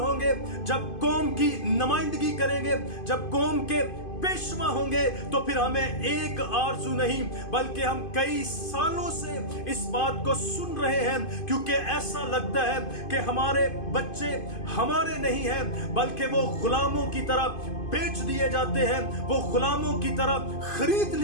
जब कौम की नुमाइंदगी करेंगे, जब कौम के पेशवा होंगे, तो फिर हमें एक आरज़ू नहीं बल्कि हम कई सालों से इस बात को सुन रहे हैं, क्योंकि ऐसा लगता है कि हमारे बच्चे हमारे नहीं हैं बल्कि वो गुलामों की तरह बेच दिए जाते हैं, वो गुलामों की तरह खरीद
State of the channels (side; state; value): right; late; 2.5 ms